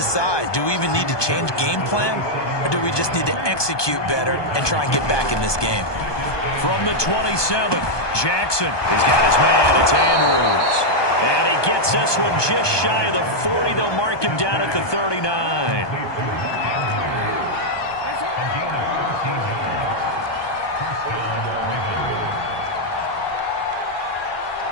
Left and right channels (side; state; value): right; late; 1.2 ms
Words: do we even need to change game plan, or do we just need to execute better and try and get back in this game? From the 27, Jackson has got his man. It's Andrews. And he gets this one just shy of the 40. They'll mark him down at the 39.